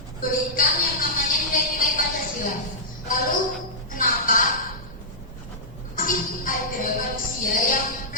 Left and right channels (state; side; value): normal; both; correlation -0.13